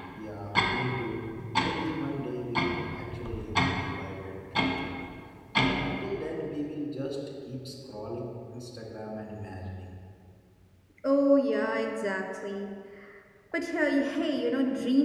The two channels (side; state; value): both; identical; correlation 1.00